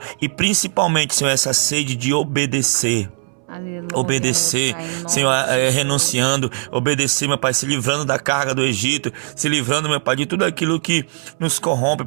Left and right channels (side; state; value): left; silent; 65 dB below the other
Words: e principalmente, Senhor, essa sede de obedecer. Aleluia, obedecer, Pai, Senhor, renunciando, obedecer, meu Pai, se livrando da carga do Egito, se livrando, meu Pai, de tudo aquilo que nos corrompe,